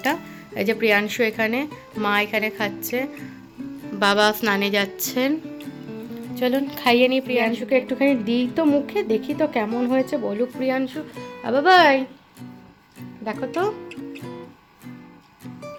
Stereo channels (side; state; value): both; identical; correlation 1.00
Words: এই যে প্রিয়াংশু এখানে, মা এখানে খাচ্ছে, বাবা স্নানে যাচ্ছেন। চলুন খাইয়ে নিই প্রিয়াংশুকে, একটুখানি দিই তো মুখে, দেখি তো কেমন হয়েছে, বলুক প্রিয়াংশু। বাবাই দেখো তো